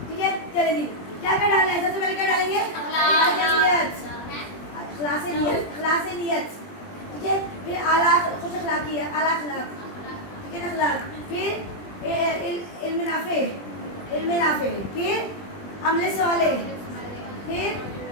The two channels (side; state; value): right; late; 20 ms